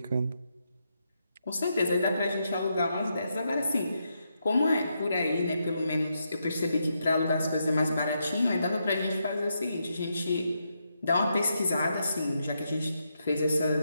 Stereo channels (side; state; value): both; inverted; correlation -0.82